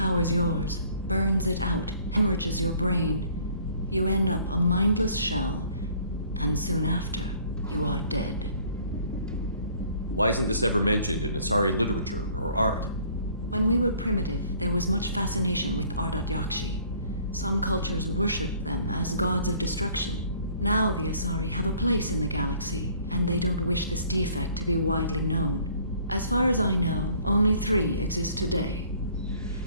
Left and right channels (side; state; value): both; inverted; correlation -0.56